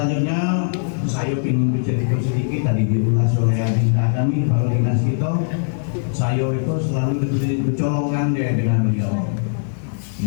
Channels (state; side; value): silent; right; digital silence